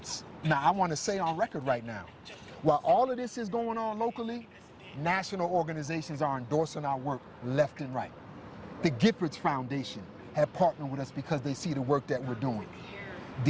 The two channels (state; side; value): identical; both; correlation 1.00